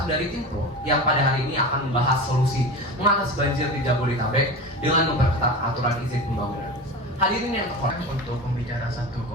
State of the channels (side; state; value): both; normal; correlation 0.29